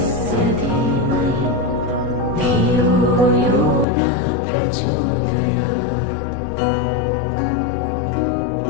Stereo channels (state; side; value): drops out; right; at 3.9 s